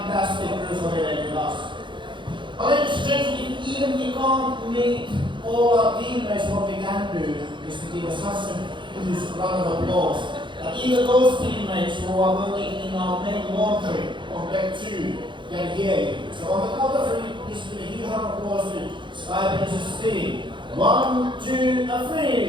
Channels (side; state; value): left; late; 0.23 ms